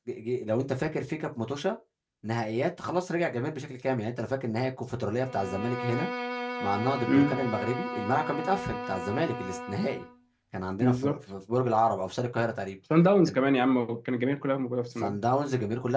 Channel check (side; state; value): both; identical; correlation 1.00